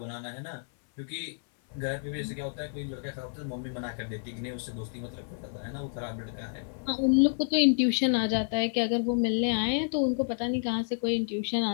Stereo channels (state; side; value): silent; right; 58 dB below the other